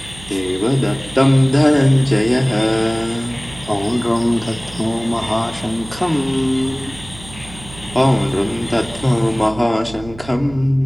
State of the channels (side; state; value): right; noise; hum, 17 dB below the sound